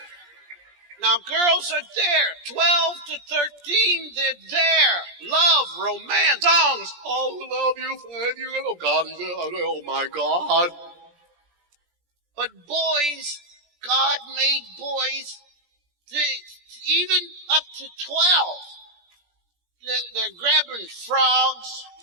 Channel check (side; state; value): left; late; 17 ms